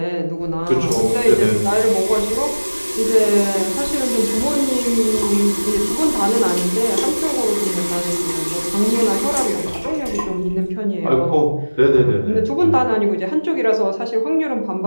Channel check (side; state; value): both; inverted; correlation -1.00